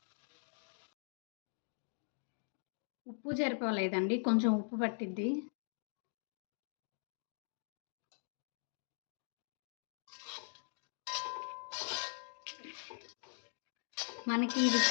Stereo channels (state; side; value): silent; right; digital silence